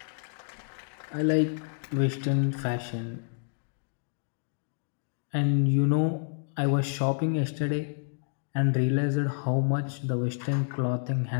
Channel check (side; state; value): right; silent; digital silence